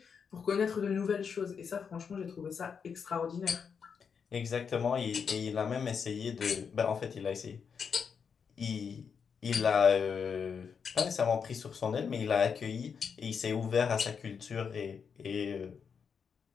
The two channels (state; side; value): quieter; right; 6.4 dB